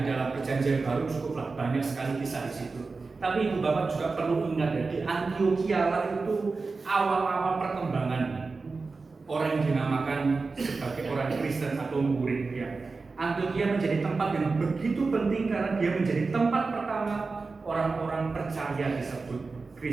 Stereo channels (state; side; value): quieter; left; 4.1 dB